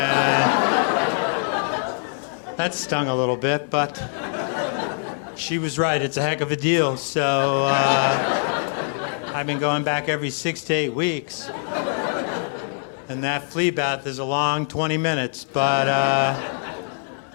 That stung a little bit, but she was right. It's a heck of a deal. So I've been going back every 6 to 8 weeks. And that flea bath is a long 20 minutes, but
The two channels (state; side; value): silent; right; digital silence